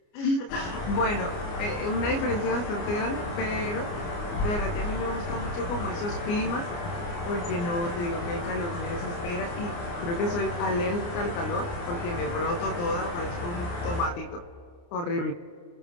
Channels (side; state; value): right; late; 29 ms